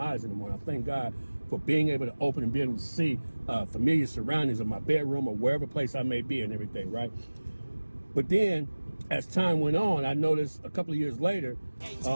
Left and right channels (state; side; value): inverted; both; correlation -1.00